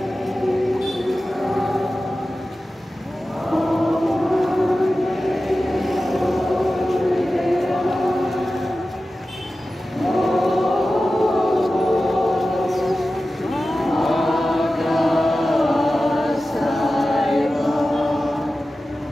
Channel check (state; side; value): normal; both; correlation 0.94